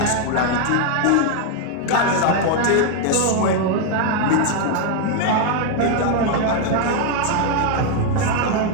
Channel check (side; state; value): both; different; correlation 0.00